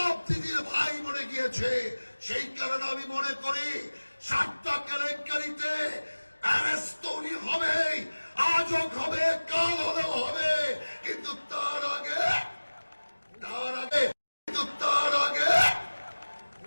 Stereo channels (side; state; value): both; inverted; correlation -1.00